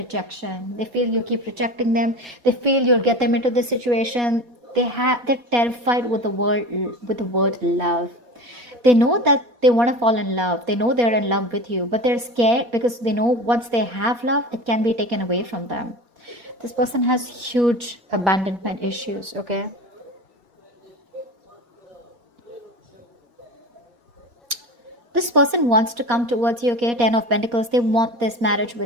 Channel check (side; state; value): left; late; 4.2 ms